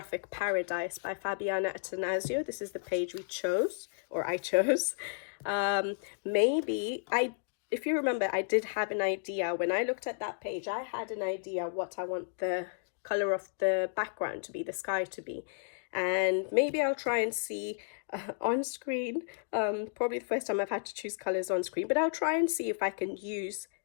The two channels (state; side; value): silent; right; digital silence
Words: paradise by Fabiana Attanasio. This is the page we chose, or I chose. If you remember, I did have an idea when I looked at that page. I had an idea what I want the color of the background to be, the sky to be, and maybe I'll try and see on screen. Probably the first time I've had to choose colors on screen, but I'll try and see if I can use